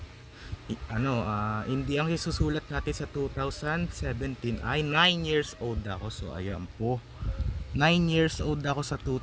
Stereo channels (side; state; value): both; identical; correlation 1.00